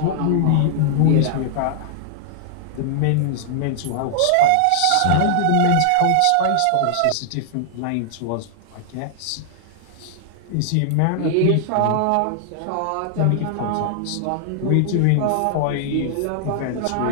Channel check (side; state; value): both; different; correlation -0.01